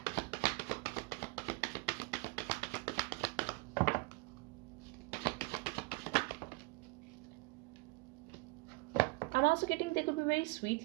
I'm also getting they could be very sweet,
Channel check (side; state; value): left; quieter; 25.4 dB